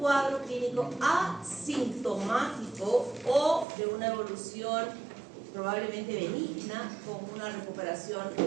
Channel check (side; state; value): left; drops out; at 3.7 s